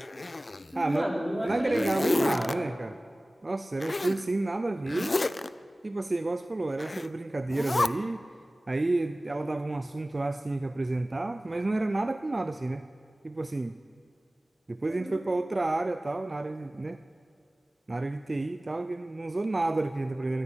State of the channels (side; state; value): both; normal; correlation 0.98